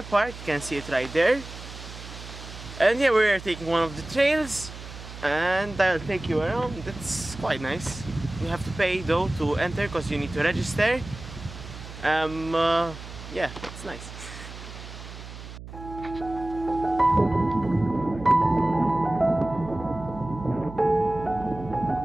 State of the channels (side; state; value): right; noise; hum, 13 dB below the sound